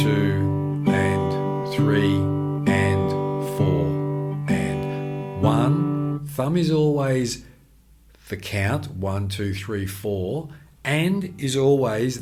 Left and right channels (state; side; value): identical; both; correlation 1.00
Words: and 3 and 4 and 1. Thumb is always the count, 1, 2, 3, 4, and is